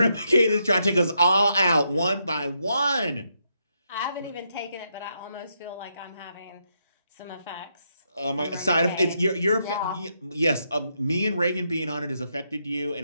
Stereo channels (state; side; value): inverted; both; correlation -0.79